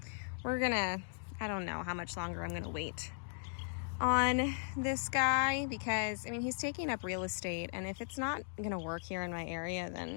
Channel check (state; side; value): silent; right; digital silence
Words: We're gonna, I don't know how much longer I'm gonna wait on this guy because, I mean, he's taking up real estate, and if it's not gonna work here in my area,